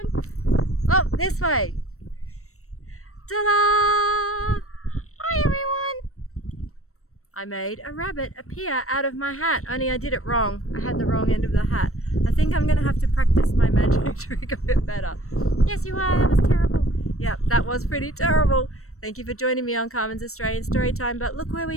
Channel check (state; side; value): late; right; 0.63 ms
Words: Oh, this way. Ta-da! Hi everyone. I made a rabbit appear out of my hat, only I did it wrong. I had the wrong end of the hat. I think I'm going to have to practice my magic trick a bit better. Yes, you are. That was terrible. Yep, that was pretty terrible. Thank you for joining me on Carmen's Australian Storytime. But look where